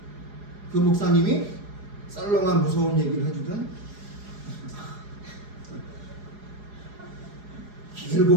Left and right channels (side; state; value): left; late; 4.8 ms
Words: 그 목사님이 썰렁한 무서운 얘기를 해주든